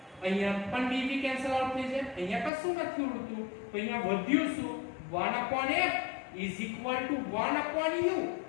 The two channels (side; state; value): right; drops out; at 2.5 s